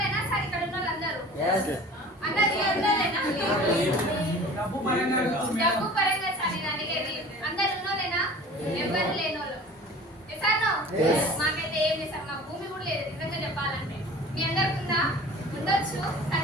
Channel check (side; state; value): both; normal; correlation 0.42